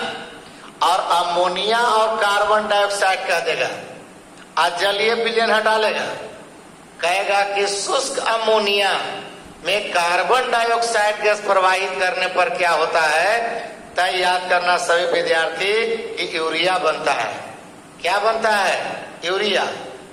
और कार्बन डाइऑक्साइड कह देगा, आज जलीय विलयन हटा लेगा, कहेगा कि शुष्क अमोनिया में कार्बन डाइऑक्साइड गैस प्रवाहित करने पर क्या होता है। तय याद करना सभी विद्यार्थी कि यूरिया बनता है। क्या बनता है? यूरिया।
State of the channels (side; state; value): both; identical; correlation 1.00